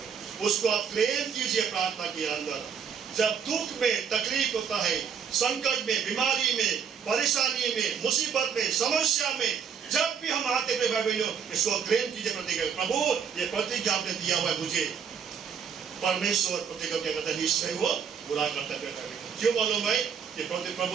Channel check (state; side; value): quieter; left; 7.1 dB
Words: उसको आप क्लेम कीजिए प्रार्थना के अंदर। जब दुख में, तकलीफ होता है, संकट में, बीमारी में, परेशानी में, मुसीबत में, समस्या में, जब भी हम आते हैं इसको क्लेम कीजिए प्रतिज्ञा। प्रभु ये प्रतिज्ञा आपने दिया हुआ है मुझे, परमेश्वर प्रतिज्ञा क्या करता है? निश्चय वो पूरा करता है। क्यों मालूम है? ये